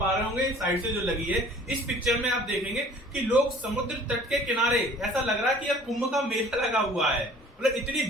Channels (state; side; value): normal; both; correlation 0.50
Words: रहे होंगे साइड से जो लगी है, इस पिक्चर में आप देखेंगे कि लोग समुद्र तट के किनारे, ऐसा लग रहा है कि यह कुंभ का मेला लगा हुआ है। मतलब इतनी